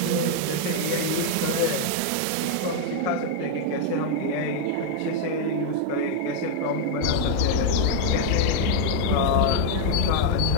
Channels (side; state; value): both; different; correlation 0.00